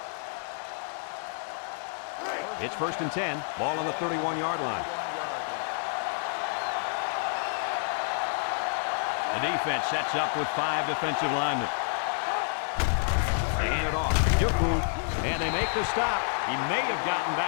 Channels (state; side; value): silent; right; digital silence